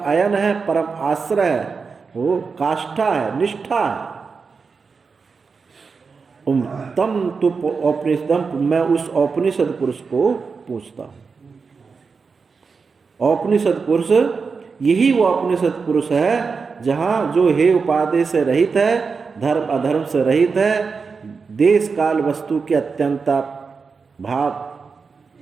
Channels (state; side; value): quieter; left; 5.1 dB